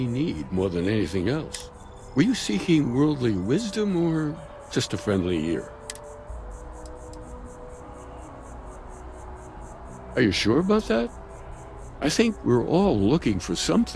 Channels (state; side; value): identical; both; correlation 1.00